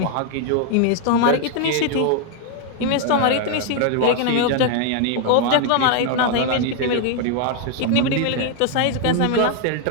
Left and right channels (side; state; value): both; different; correlation 0.01